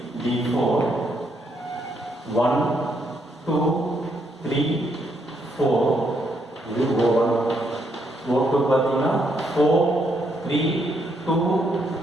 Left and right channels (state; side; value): normal; both; correlation 0.75